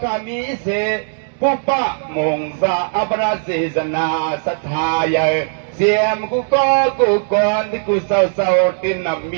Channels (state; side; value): silent; left; digital silence